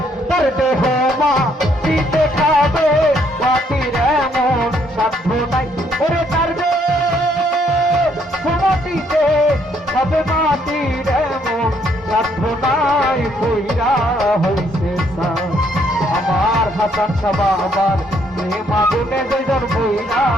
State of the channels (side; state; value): both; normal; correlation 0.69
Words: তার দেহ মাটিতে খাবে মাটির এমন সাধ্য নাই ওরে তার দেহ মাটিতে খাবে মাটির এমন সাধ্য নাই কইরা হইছে আমার হাসান সাবা আমার প্রেম আগুনে দুইজন বইরা